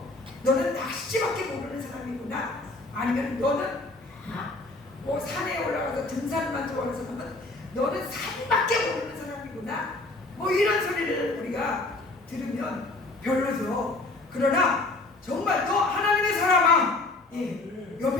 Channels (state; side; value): quieter; right; 3.0 dB